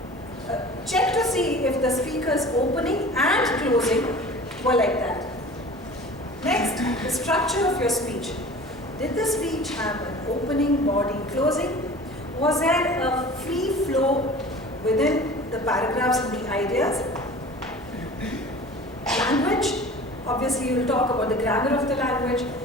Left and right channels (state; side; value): normal; both; correlation 0.41